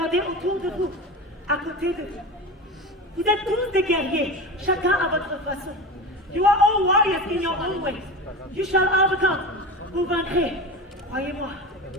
autour de vous, à côté de vous. Vous êtes tous des guerriers, chacun à votre façon. You are all warriors in your own way. You shall overcome. Vous vaincrez, croyez-moi.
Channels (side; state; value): both; normal; correlation 0.27